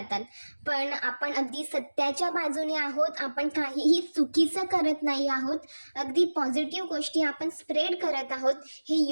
पण आपण अगदी सत्याच्या बाजूने आहोत, आपण काहीही चुकीचं करत नाही आहोत, अगदी पॉझिटिव्ह गोष्टी आपण स्प्रेड करत आहोत, हे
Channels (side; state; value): both; inverted; correlation -1.00